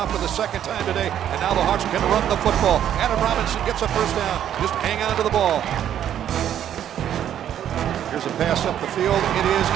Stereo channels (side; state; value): left; quieter; 10.3 dB